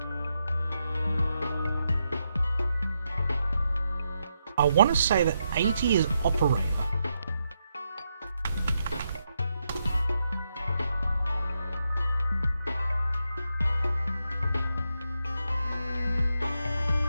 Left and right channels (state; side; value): inverted; both; correlation -0.83